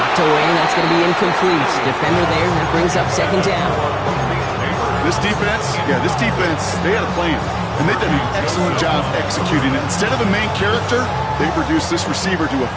away, that's going to be incomplete. Defender there, and that brings up 2nd down. This defense, they had a plan, and they've done an excellent job executing it. Instead of a main character, they've reduced this receiver to a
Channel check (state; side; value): identical; both; correlation 1.00